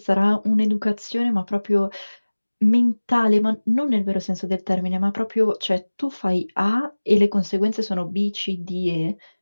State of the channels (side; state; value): both; inverted; correlation -1.00